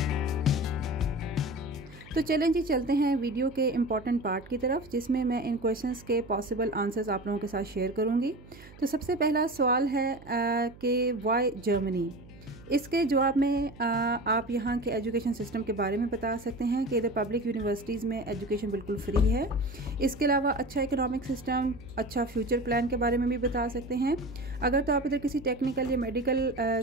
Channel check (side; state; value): right; noise; hum, 21 dB below the sound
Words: तो चलें जी, चलते हैं video के important part की तरफ, जिसमें मैं इन questions के पॉसिबल आंसर्स आप लोगों के साथ शेयर करूंगी। तो सबसे पहला सवाल है कि वाई जर्मनी। इसके जवाब में आप यहाँ के एजुकेशन सिस्टम के बारे में बता सकते हैं कि इधर पब्लिक यूनिवर्सिटीज़ में एजुकेशन बिल्कुल फ्री है। इसके अलावा अच्छा इकोनॉमिक सिस्टम, अच्छा फ्यूचर प्लान के बारे में भी बता सकते हैं। अगर तो आप इधर किसी टेक्निकल या मेडिकल